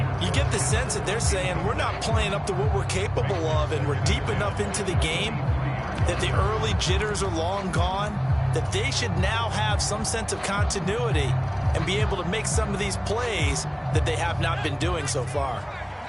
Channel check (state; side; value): identical; both; correlation 1.00